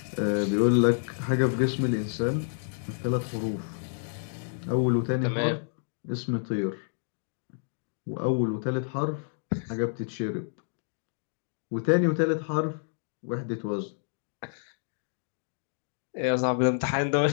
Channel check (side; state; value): right; silent; digital silence